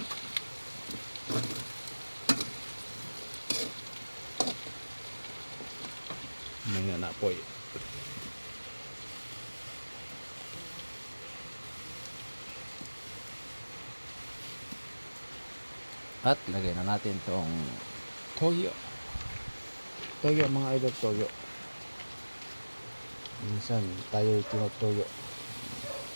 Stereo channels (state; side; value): inverted; both; correlation -1.00